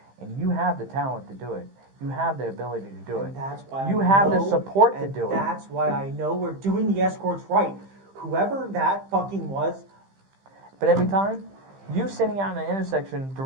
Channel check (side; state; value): left; late; 15 ms